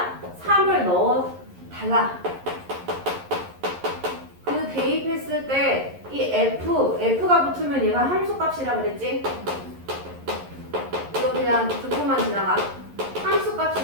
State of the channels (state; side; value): late; left; 11 ms